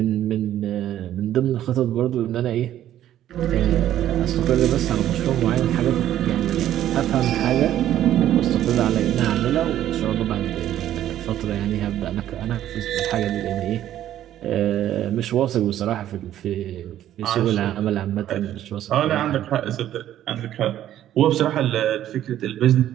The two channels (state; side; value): quieter; left; 12.1 dB